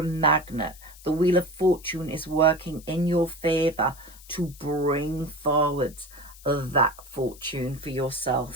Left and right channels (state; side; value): noise; left; hiss, 21 dB below the sound